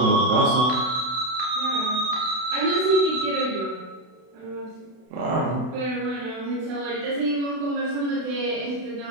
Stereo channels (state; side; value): late; left; 32 ms